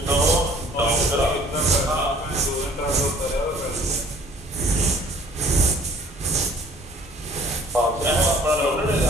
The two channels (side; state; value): both; normal; correlation 0.52